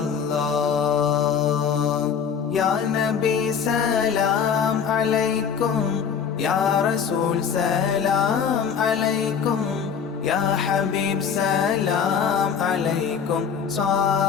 يا نبي سلام عليكم يا رسول سلام عليكم يا حبيب سلام عليكم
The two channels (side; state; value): right; quieter; 7.0 dB